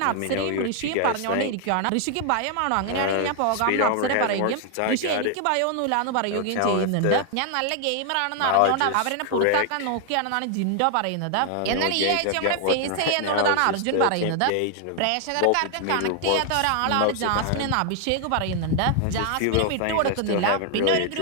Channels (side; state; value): both; different; correlation 0.00